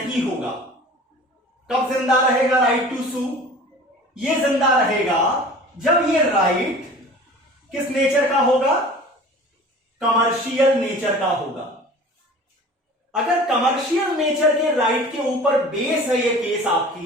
होगा। कब जिंदा रहेगा राइट टू सू? ये जिंदा रहेगा जब ये राइट किस नेचर का होगा? कमर्शियल नेचर का होगा। अगर कमर्शियल नेचर के राइट के ऊपर बेस है ये केस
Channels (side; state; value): both; normal; correlation 0.42